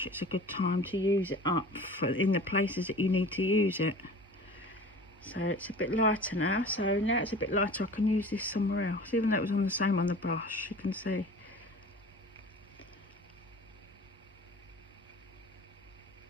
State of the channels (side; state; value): both; normal; correlation 0.41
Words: it's a good time to use it up in the places that you need to use it. So it's a bit lighter now. So now it's a bit lighter, I can use this somewhere else. Even though it was on the same on the brush, you can see.